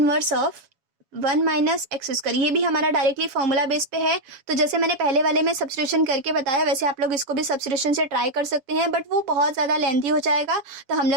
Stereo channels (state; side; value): late; left; 7.1 ms